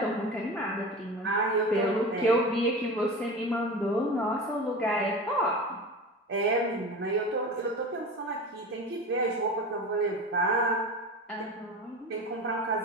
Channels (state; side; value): normal; both; correlation 0.30